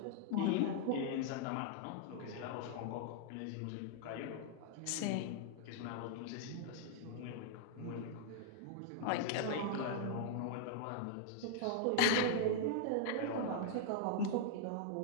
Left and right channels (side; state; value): both; different; correlation -0.01